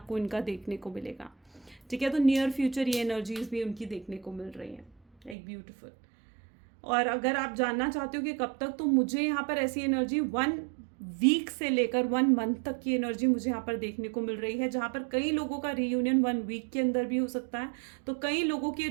इनका देखने को मिलेगा, ठीक है। तो नियर फ्यूचर ये एनर्जीज भी उनकी देखने को मिल रही हैं, एक ब्यूटीफुल। और अगर आप जानना चाहते हो कि कब तक, तो मुझे यहाँ पर ऐसी एनर्जी 1 वीक से लेकर 1 मंथ तक की एनर्जी मुझे यहाँ पर देखने को मिल रही है, जहाँ पर कई लोगों का रीयूनियन 1 वीक के अंदर भी हो सकता है, तो कई लोगों के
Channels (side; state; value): left; drops out; at 5.4 s